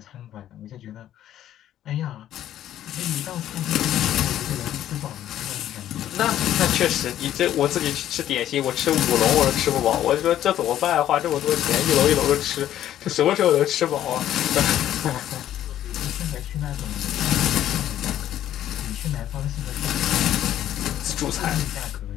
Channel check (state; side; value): quieter; right; 11.9 dB